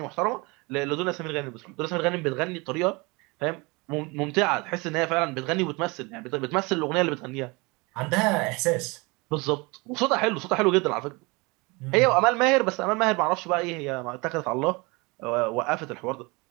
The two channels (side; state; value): left; quieter; 26.4 dB